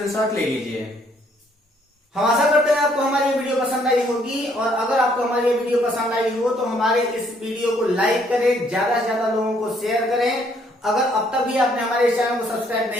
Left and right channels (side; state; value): both; normal; correlation 0.67